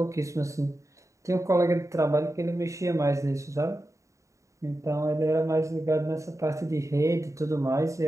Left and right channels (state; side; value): late; left; 0.15 ms